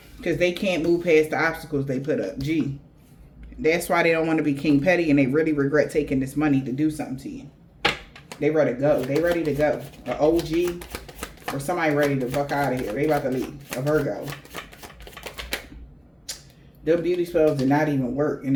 Because they can't move past the obstacles they put up. Gee. That's why they don't want to be King Petty, and they really regret taking this money to do something to you. They ready to go. They ready to go. An OG or somebody ready to fuck out of here. They about to leave. A Virgo. Them beauty spells did not even work, and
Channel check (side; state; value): both; identical; correlation 1.00